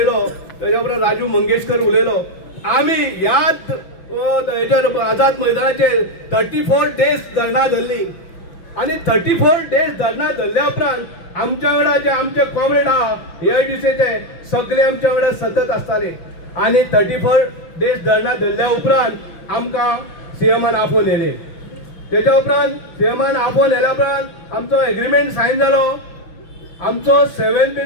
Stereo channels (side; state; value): right; late; 6.0 ms